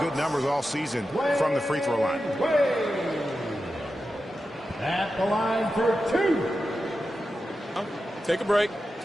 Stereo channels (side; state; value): both; normal; correlation 0.91